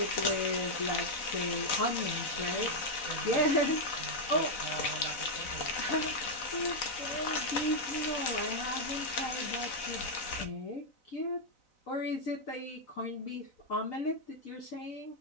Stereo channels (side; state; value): right; late; 4.0 ms